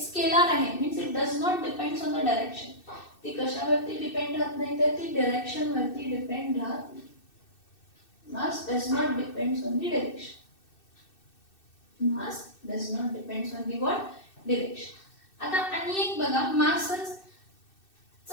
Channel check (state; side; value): late; right; 2.6 ms